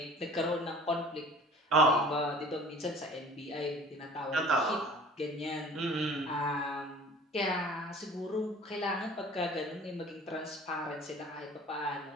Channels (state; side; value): normal; both; correlation 0.45